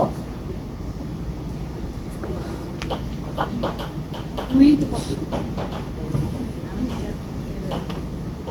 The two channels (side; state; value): both; identical; correlation 1.00